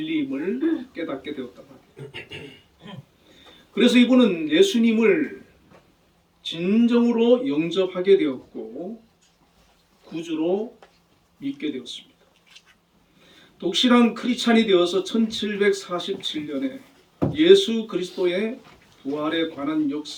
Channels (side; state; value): both; identical; correlation 1.00